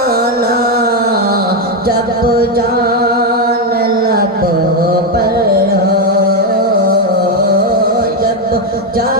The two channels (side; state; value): both; normal; correlation 0.06